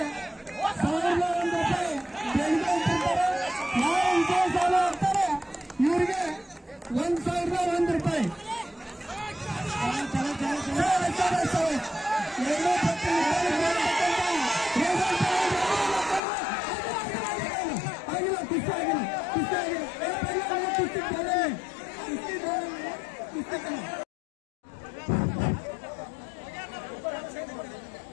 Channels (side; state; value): right; drops out; at 16.2 s